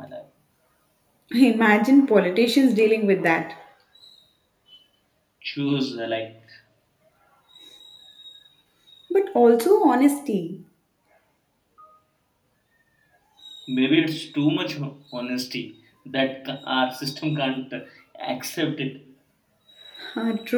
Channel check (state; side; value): identical; both; correlation 1.00